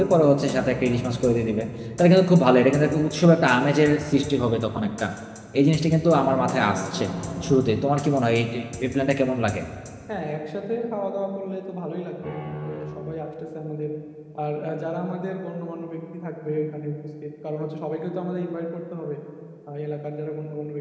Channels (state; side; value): identical; both; correlation 1.00